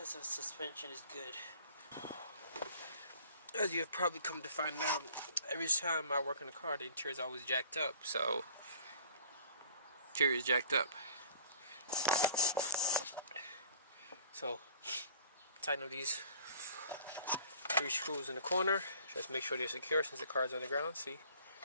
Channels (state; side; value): inverted; both; correlation -0.52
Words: of suspension is good. As you have probably come to find out, every time I work in a car, the interior is always jacked up. So, interior is jacked up. So, tighten up these 3 screws in the corner. Just make sure they're secure since the car is on the ground. See,